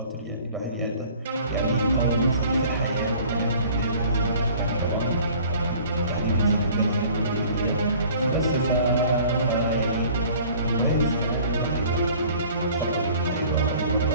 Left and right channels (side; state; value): both; inverted; correlation -0.50